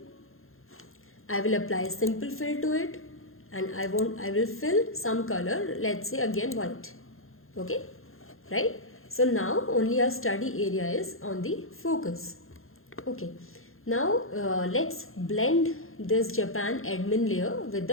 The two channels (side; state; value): right; late; 0.61 ms